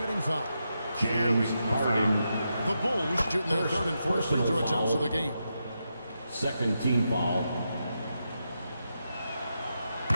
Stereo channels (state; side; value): inverted; both; correlation -0.85